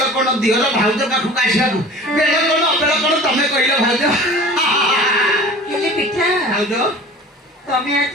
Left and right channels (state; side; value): normal; both; correlation 0.42